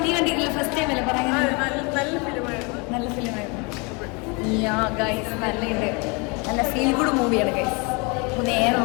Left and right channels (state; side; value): quieter; right; 30.3 dB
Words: കണ്ടിട്ടില്ല, ഫസ്റ്റ് ടൈം അല്ലേ പറയുന്നത്. നല്ല ഫിലിമായിരുന്നു. നല്ലുണ്ട്. നല്ല ഫീൽ ഗുഡ് മൂവിയാണ് ഗൈസ്. നേരെ